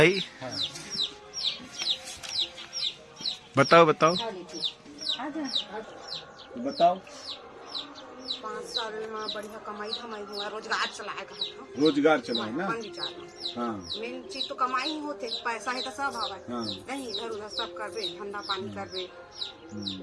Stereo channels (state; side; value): identical; both; correlation 1.00